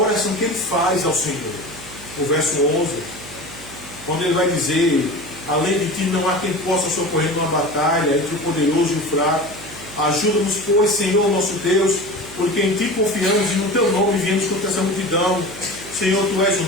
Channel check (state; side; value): noise; right; hum, 18 dB below the sound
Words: que ele faz ao Senhor. O verso 11, quando ele vai dizer, além de ti não há quem possa socorrer numa batalha entre o poderoso e o fraco. Ajuda-nos, pois, Senhor nosso Deus, porque em ti confiamos e no teu nome viemos contra essa multidão. Senhor, tu és o